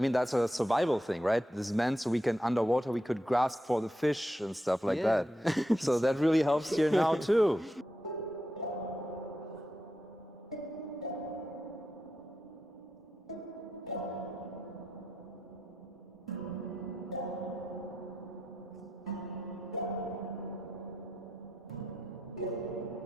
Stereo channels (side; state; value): both; normal; correlation 0.86